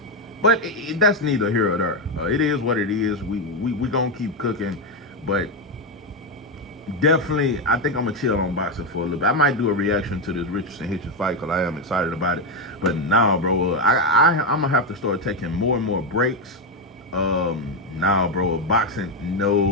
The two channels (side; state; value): both; normal; correlation 0.06